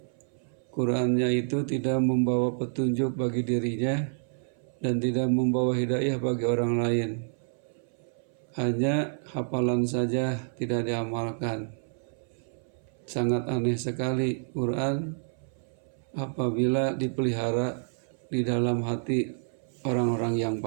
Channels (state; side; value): silent; left; 59 dB below the other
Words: Qurannya itu tidak membawa petunjuk bagi dirinya dan tidak membawa hidayah bagi orang lain. Hanya hafalan saja, tidak diamalkan. Sangat aneh sekali Quran apabila dipelihara di dalam hati orang-orang yang